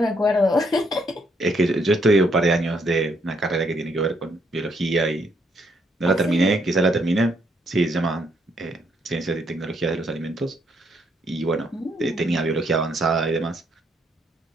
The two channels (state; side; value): normal; both; correlation 0.73